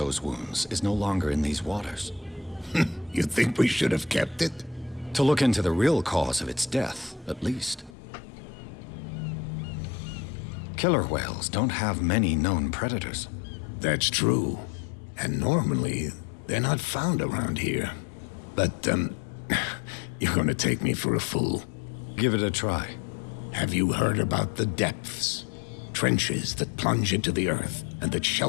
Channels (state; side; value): drops out; right; at 8.0 s